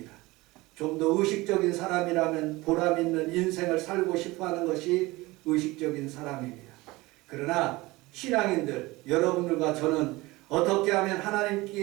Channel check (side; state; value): left; quieter; 21.0 dB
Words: 좀 더 의식적인 사람이라면 보람 있는 인생을 살고 싶어하는 것이 의식적인 사람입니다. 그러나 신앙인들, 여러분들과 저는 어떻게 하면